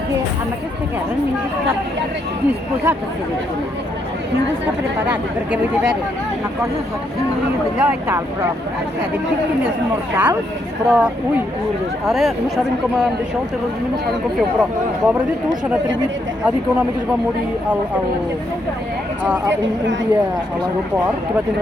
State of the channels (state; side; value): normal; both; correlation 0.76